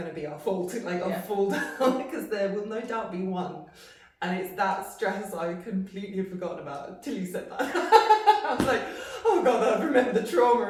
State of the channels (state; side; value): identical; both; correlation 1.00